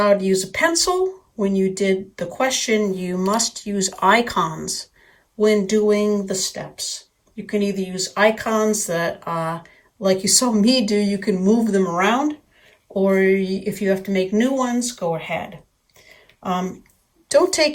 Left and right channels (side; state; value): both; identical; correlation 1.00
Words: to use a pencil when you did the question, you must use icons when doing the steps. You can either use icons that, like you saw me do, you can move them around, or if you have to make new ones, go ahead. Don't